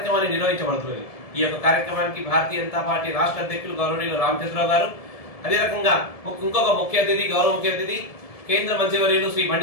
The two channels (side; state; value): right; late; 1.7 ms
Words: నిర్వహించబడుతుంది. ఈ యొక్క కార్యక్రమానికి భారతీయ జనతా పార్టీ రాష్ట్ర అధ్యక్షులు గౌరవనీయులు రామచంద్రరావు గారు, అదే రకంగా ఇంకొక ముఖ్య అతిథి గౌరవ ముఖ్య అతిథి కేంద్ర మంత్రివర్యులు శ్రీ